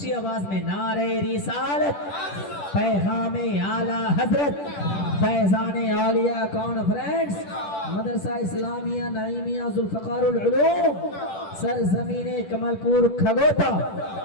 آواز میں نعرہ رسالت، پیغام اعلیٰ حضرت، فیضان عالیہ کانفرنس، مدرسہ اسلامیہ نعیمیہ ذوالفقار العلوم، سرزمین کمل پور کھگوتا،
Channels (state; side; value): late; right; 10 ms